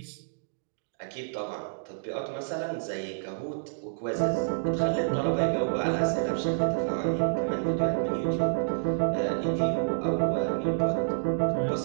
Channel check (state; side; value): silent; left; digital silence